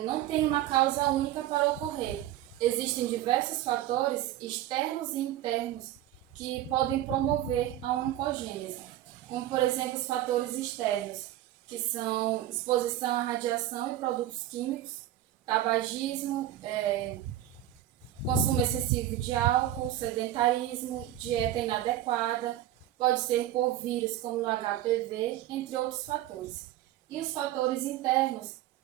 não tem uma causa única para ocorrer. Existem diversos fatores externos e internos que podem promover a oncogênese, como por exemplo os fatores externos, que são exposição à radiação e produtos químicos, tabagismo, consumo excessivo de álcool, sedentarismo, dieta inadequada, pode ser por vírus como no HPV, entre outros fatores. E os fatores internos,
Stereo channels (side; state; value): left; quieter; 13.0 dB